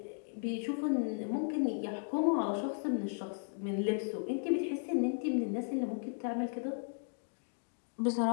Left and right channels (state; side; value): silent; right; digital silence